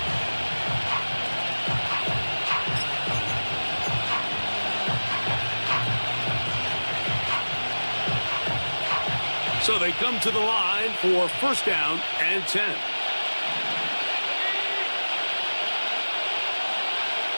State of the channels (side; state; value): both; inverted; correlation -1.00